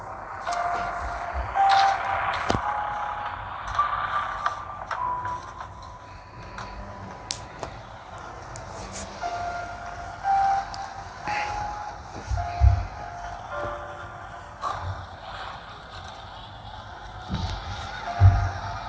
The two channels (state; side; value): identical; both; correlation 1.00